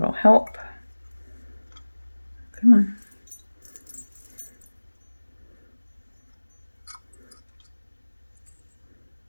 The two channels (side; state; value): both; inverted; correlation -1.00